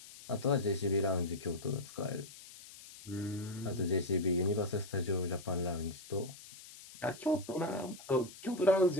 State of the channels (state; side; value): noise; left; hiss, 17 dB below the sound